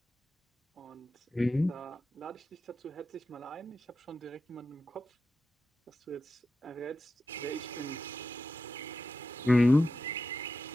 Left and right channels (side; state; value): both; normal; correlation 0.90